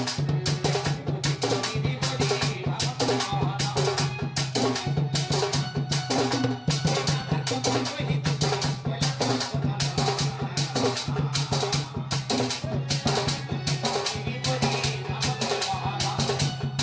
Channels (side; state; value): both; identical; correlation 1.00